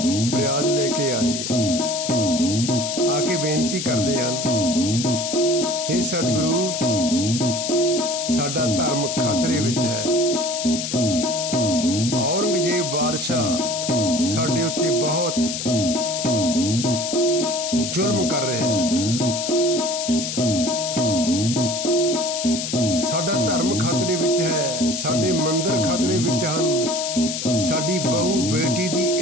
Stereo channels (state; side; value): noise; left; hiss, 4 dB below the sound